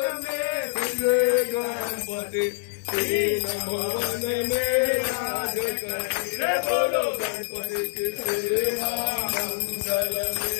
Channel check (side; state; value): right; silent; digital silence